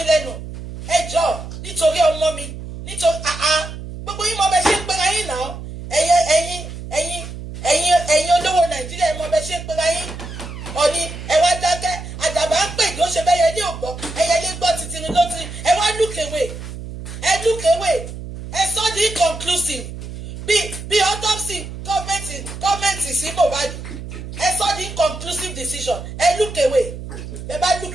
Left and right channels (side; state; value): right; noise; hum, 10 dB below the sound